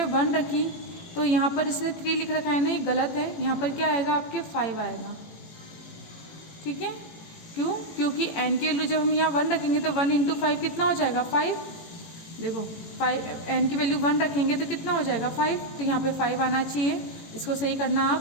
1 रखी, तो यहाँ पर इसने 3 लिख रखा है ना, ये गलत है। यहाँ पर क्या आएगा, आपके 5 आएगा। ठीक है, क्यों, क्योंकि n की वैल्यू जब हम यहाँ 1 रखेंगे तो 1 इंटू 5 कितना हो जाएगा, 5। देखो 5, n की वैल्यू 1 रखेंगे तो कितना हो जाएगा, 5। तो यहाँ पे 5 आना चाहिए। इसको सही करना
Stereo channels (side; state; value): right; late; 18 ms